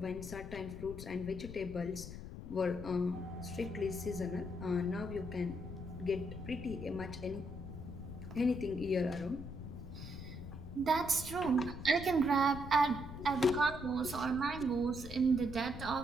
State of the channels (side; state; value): left; noise; rumble, 10 dB below the sound